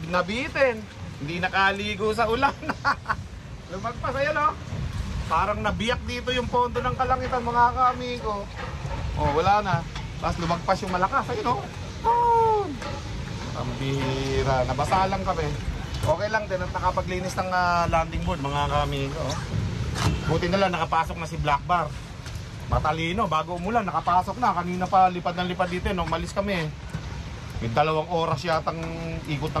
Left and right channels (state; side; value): identical; both; correlation 1.00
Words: Nabitin. Hindi nakaligo sa ulan. Lumagpas, ayan, no? Parang nabiyak dito yung pondo ng kalangitan mga kamigo. Oh, wala na. Tapos lumagpas yung malakas, ayun, no? Oh! Ang bihira. Nabasa lang kami. Okay lang din at nakapaglinis ng landing board mga kamigo. Buti na lang nakapasok na si Black Bar. Matalino, bago umulan nakapasok na. Kanina pa lipad ng lipad dito, no? Umalis kami. May 2 oras yatang ikot